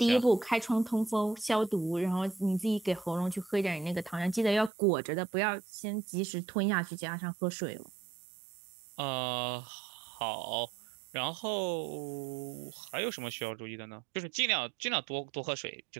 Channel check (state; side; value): drops out; left; at 4.7 s